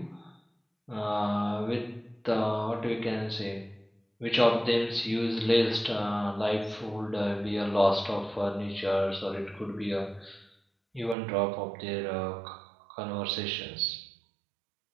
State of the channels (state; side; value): drops out; left; at 11.2 s